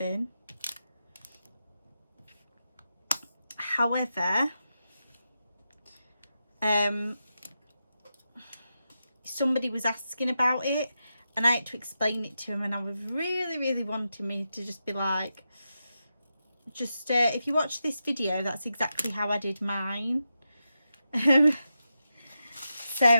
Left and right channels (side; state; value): both; inverted; correlation -0.88